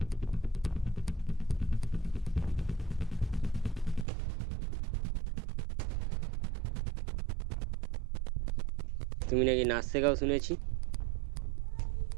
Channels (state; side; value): drops out; left; at 4.0 s